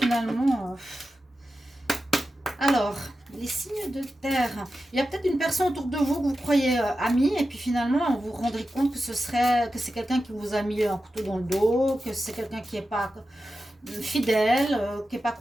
Alors, les signes de terre. Il y a peut-être une personne autour de vous que vous croyez amie et puis finalement, vous vous rendrez compte que c'est quelqu'un qui vous a mis un couteau dans le dos, que c'est quelqu'un qui n'est pas fidèle, qui n'est pas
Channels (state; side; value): normal; both; correlation 0.92